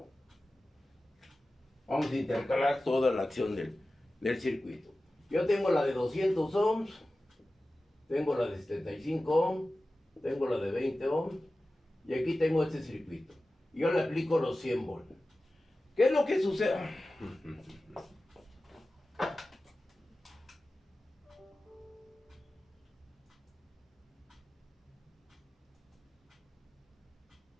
Vamos a intercalar toda la acción del circuito. Yo tengo la de 200 ohms, tengo la de 75 ohms, tengo la de 20 ohms, y aquí tengo este circuito. Yo le aplico los 100 volts. ¿Qué es lo que sucede?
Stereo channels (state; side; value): normal; both; correlation 0.95